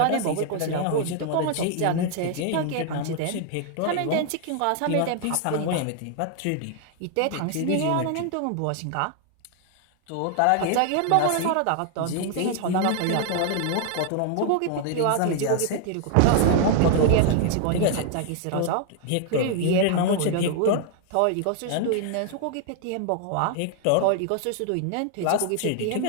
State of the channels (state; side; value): different; both; correlation 0.00